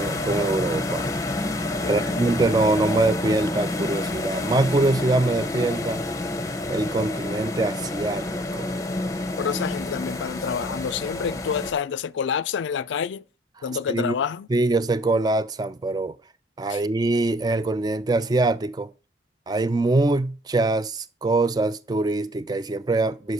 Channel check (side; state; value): both; normal; correlation 0.60